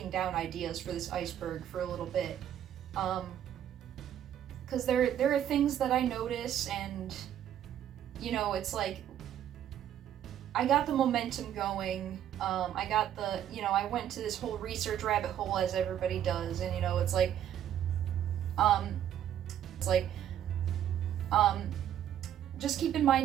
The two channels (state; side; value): quieter; left; 10.6 dB